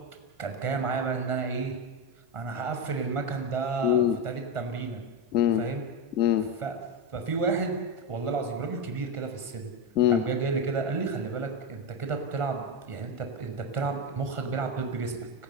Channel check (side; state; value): left; late; 1.5 ms